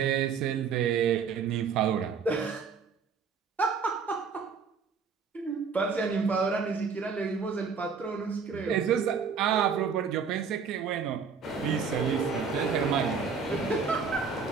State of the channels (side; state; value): left; quieter; 5.8 dB